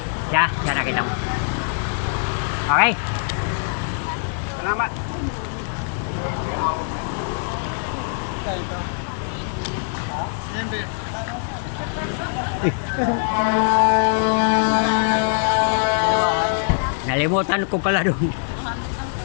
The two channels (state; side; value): silent; right; digital silence